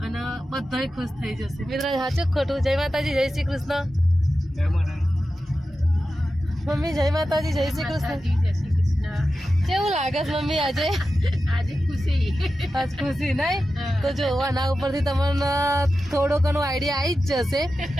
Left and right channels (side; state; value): both; normal; correlation 0.92